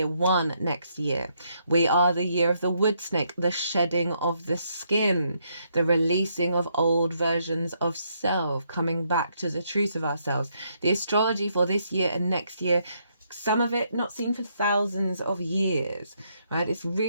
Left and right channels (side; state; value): both; inverted; correlation -0.75